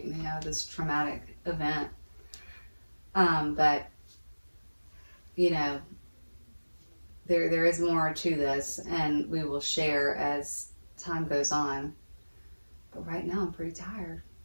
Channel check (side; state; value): both; inverted; correlation -1.00